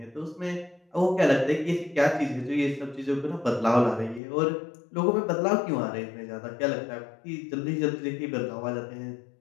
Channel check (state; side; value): drops out; right; at 4.2 s